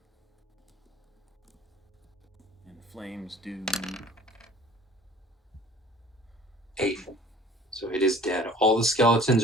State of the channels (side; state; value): both; normal; correlation 0.49